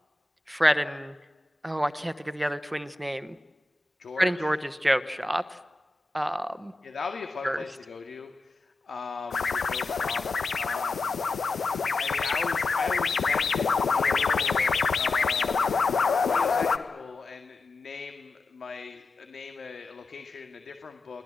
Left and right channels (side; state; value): right; quieter; 3.1 dB